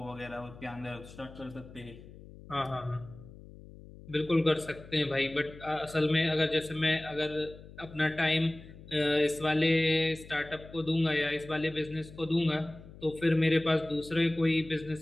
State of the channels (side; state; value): left; noise; hum, 18 dB below the sound